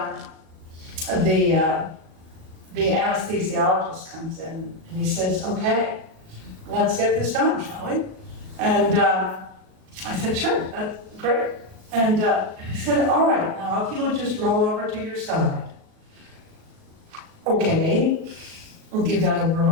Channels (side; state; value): left; late; 37 ms